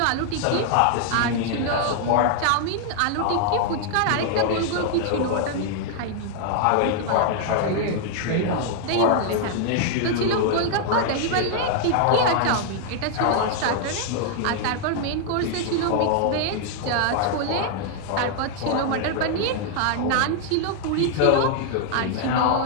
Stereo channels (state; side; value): different; both; correlation 0.00